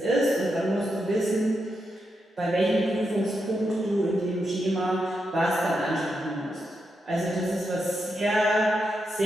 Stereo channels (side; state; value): both; normal; correlation 0.85